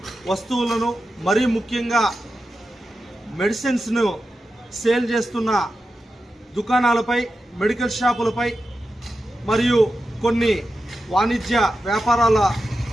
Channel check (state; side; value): normal; both; correlation 0.90